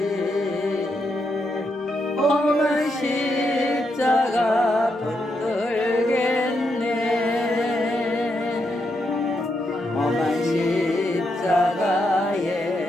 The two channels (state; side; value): normal; both; correlation 0.81